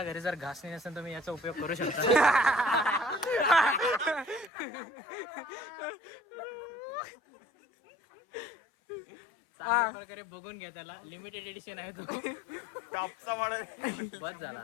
घरी जर घासणी नसेल तुम्ही याचा उपयोग करू शकता. चांगल्या प्रकारे बघून घ्या, त्याला लिमिटेड एडिशन आहे तो. टॉपचा वाढ. बस झाला,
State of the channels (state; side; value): drops out; right; at 4.5 s